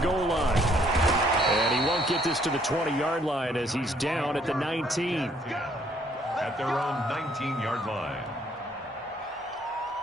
line. And he won't get this to the 20-yard line as he's down at the 19. At their own 19-yard line.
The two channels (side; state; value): both; normal; correlation 0.65